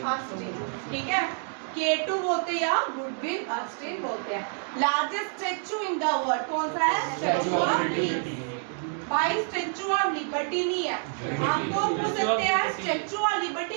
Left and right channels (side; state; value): left; silent; 60 dB below the other